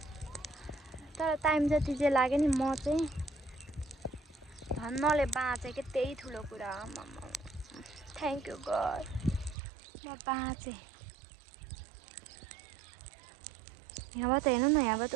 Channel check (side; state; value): left; drops out; at 9.6 s